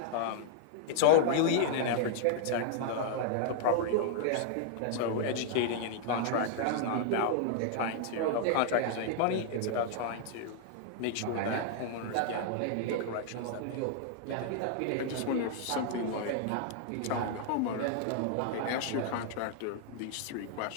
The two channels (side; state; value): both; different; correlation 0.00